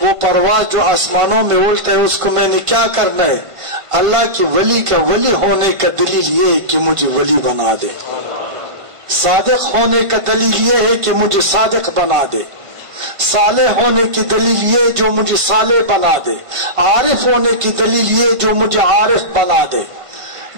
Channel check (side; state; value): left; late; 1.5 ms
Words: وہ پرواز جو آسمانوں میں اڑتا ہے, اس کو میں نے کیا کرنا ہے؟ اللہ کی ولی کا ولی ہونے کا دلیل یہ ہے کہ مجھے ولی بنا دے. صادق ہونے کا دلیل یہ ہے کہ مجھے صادق بنا دے. صالح ہونے کی دلیل یہ جو مجھے صالح بنا دے. عارف ہونے کی دلیل یہ جو مجھے عارف بنا دے.